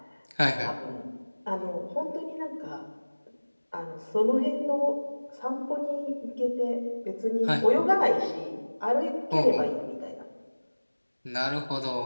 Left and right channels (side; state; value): both; inverted; correlation -1.00